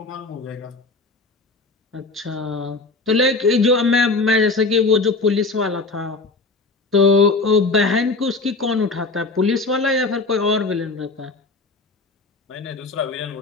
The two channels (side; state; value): right; quieter; 3.5 dB